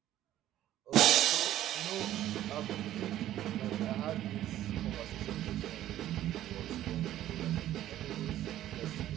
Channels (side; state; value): left; quieter; 13.0 dB